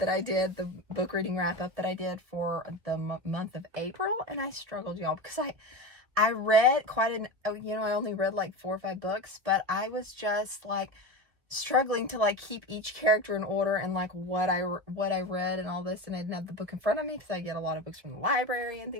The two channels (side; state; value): left; late; 2.0 ms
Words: I did, the book reading wrap-up that I did for the month of April, and I struggled, y'all, because I read quite I only read like 4 or 5 books, but I was just like struggling to like keep each character in order and like what I read and all this, and I didn't have the book in front of me because I get a lot of books from the library and